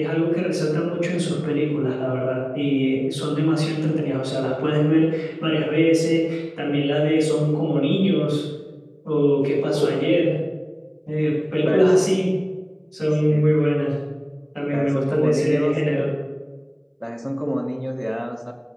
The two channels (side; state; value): both; identical; correlation 1.00